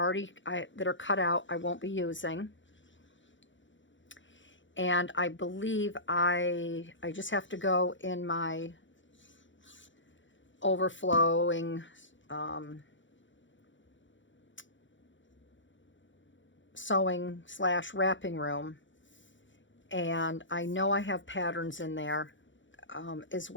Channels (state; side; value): late; right; 0.55 ms